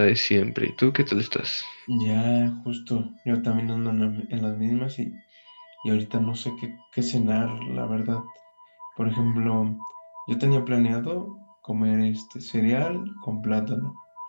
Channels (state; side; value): inverted; both; correlation -1.00